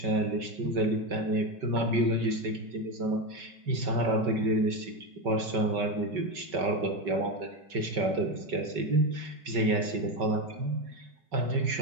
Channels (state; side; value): late; left; 5.3 ms